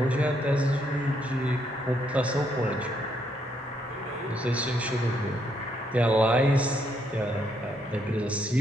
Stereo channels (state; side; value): normal; both; correlation 0.74